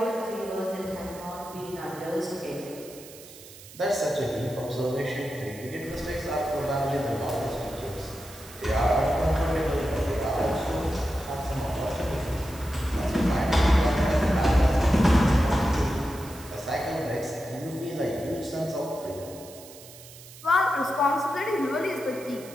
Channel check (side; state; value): right; noise; hiss, 18 dB below the sound